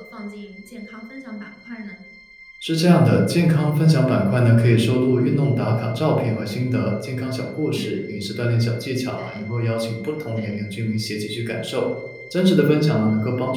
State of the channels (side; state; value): both; identical; correlation 1.00